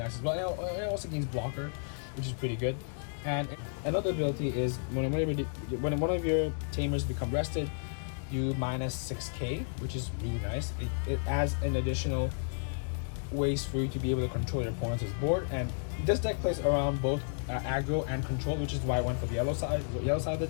as well. It also gains blocker, which is pretty good. And another ability is when one of your tamers become rested, you minus 6k, which is really nice. It adds an additional ways for you to be able to control your opponent's board, and this deck plays around both aggro and control, which is why I went for the yellow side of the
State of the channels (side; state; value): right; silent; digital silence